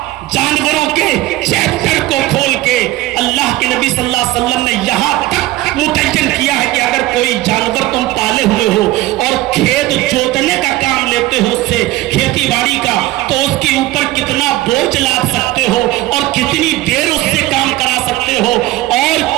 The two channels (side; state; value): left; quieter; 17.0 dB